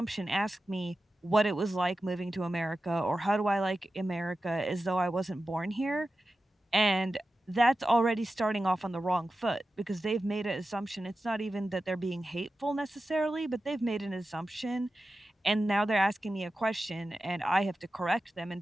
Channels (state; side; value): normal; both; correlation 0.93